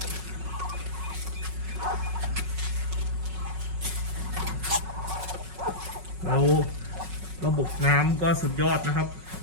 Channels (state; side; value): late; left; 5.4 ms